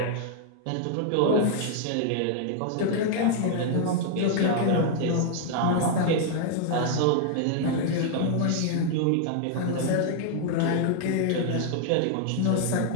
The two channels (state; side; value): different; both; correlation 0.00